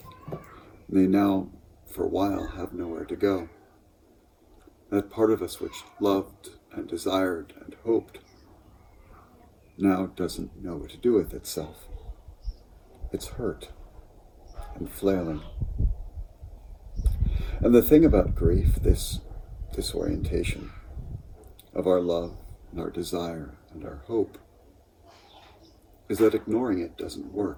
They now, for a while, have nowhere to go. That part of us which loved and desired and hoped now doesn't know what to do with itself. It's hurt and flailing. And the thing about grief, this disorientation of our love and our desire and our hope, is that ignoring it doesn't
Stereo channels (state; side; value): identical; both; correlation 1.00